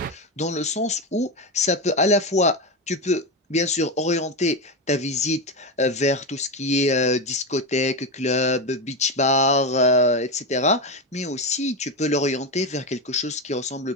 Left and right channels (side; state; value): both; normal; correlation 0.14